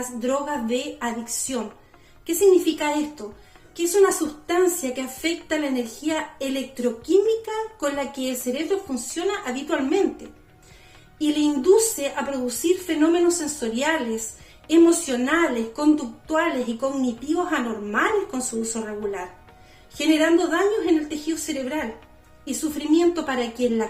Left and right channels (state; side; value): identical; both; correlation 1.00